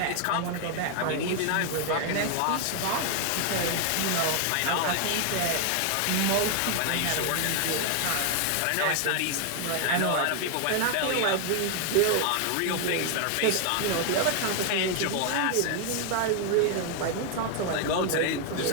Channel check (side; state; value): both; different; correlation 0.00